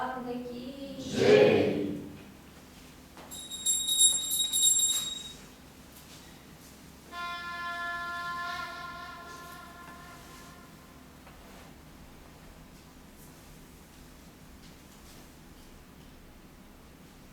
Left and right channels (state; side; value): identical; both; correlation 1.00